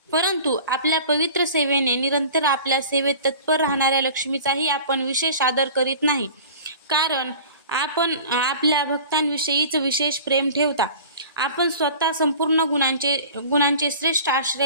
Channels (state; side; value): inverted; both; correlation -0.41